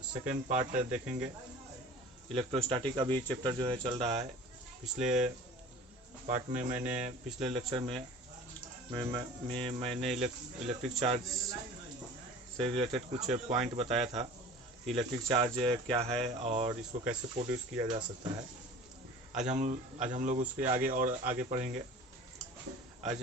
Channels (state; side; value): normal; both; correlation 0.42